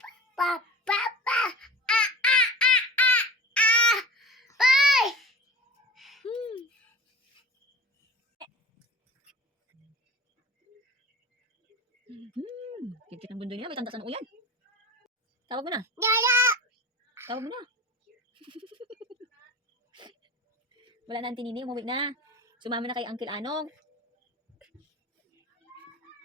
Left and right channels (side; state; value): both; normal; correlation 0.35